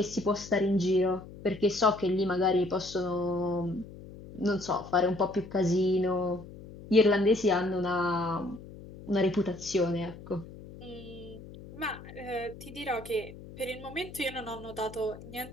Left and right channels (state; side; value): noise; left; hum, 16 dB below the sound